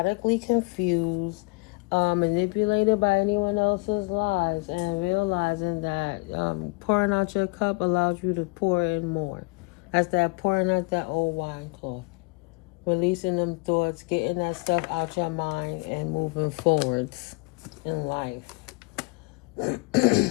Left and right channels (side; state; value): right; quieter; 28.2 dB